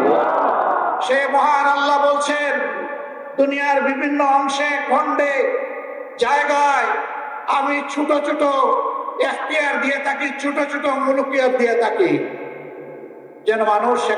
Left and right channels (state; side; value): identical; both; correlation 1.00